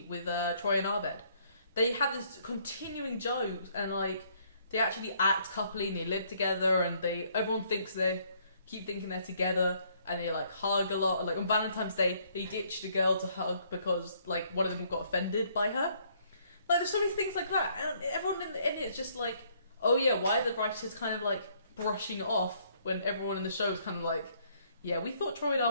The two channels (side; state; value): both; inverted; correlation -0.66